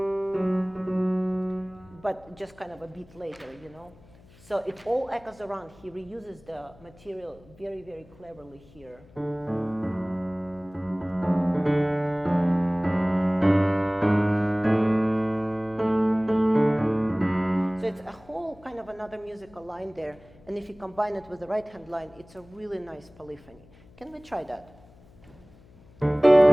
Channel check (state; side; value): noise; left; hum, 25 dB below the sound